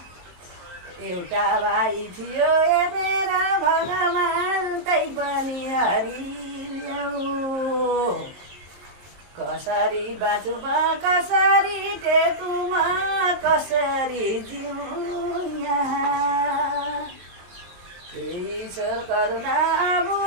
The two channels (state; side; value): late; left; 23 ms